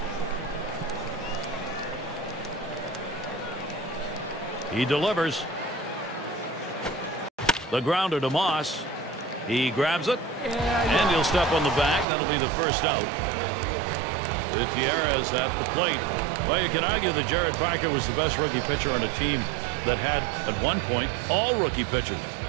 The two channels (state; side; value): drops out; left; at 12.1 s